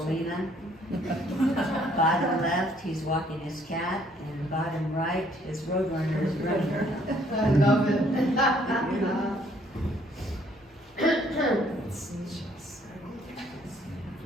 Bottom left, he's walking his cat, and bottom right, his roadrunner is running around. I love it.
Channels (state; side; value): normal; both; correlation 0.64